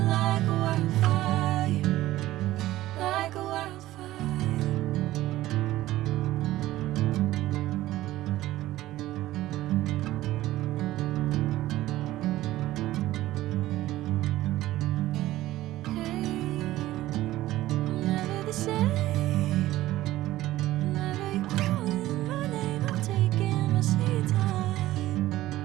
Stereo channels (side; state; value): left; quieter; 15.7 dB